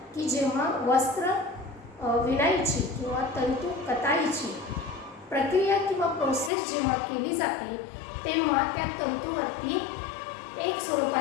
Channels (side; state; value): right; drops out; at 6.5 s